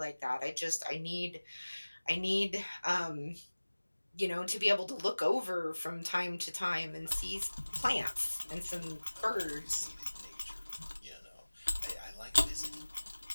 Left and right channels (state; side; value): inverted; both; correlation -1.00